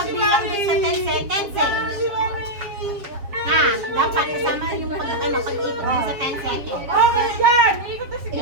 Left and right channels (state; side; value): late; left; 7.3 ms